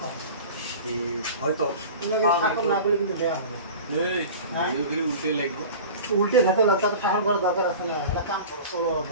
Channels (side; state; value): both; inverted; correlation -0.36